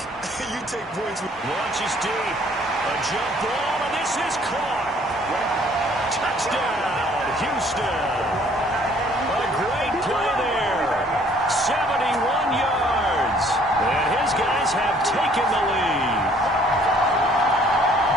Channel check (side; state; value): both; normal; correlation 0.59